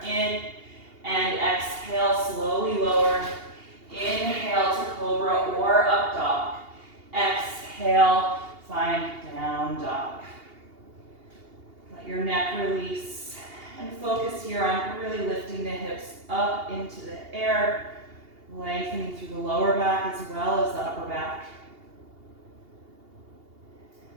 in and exhale, slowly lower. Inhale to cobra or up dog. Exhale, find down dog. Let your neck release and focus here on really lifting the hips up into the air, lengthening through the lower back as well as the upper back.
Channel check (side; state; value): left; late; 2.8 ms